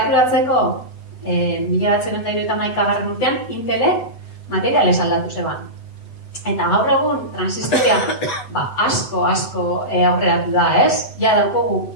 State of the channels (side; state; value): right; late; 7.9 ms